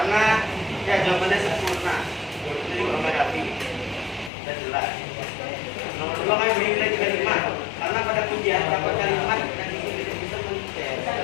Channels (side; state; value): right; drops out; at 4.3 s